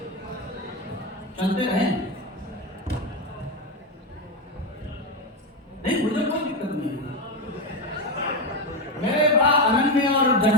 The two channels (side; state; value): both; normal; correlation 0.12